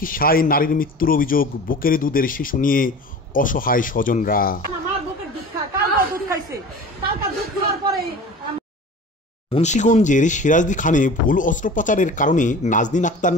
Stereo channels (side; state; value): both; normal; correlation 0.39